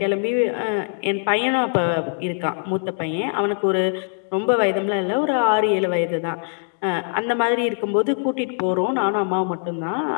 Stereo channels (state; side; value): silent; right; digital silence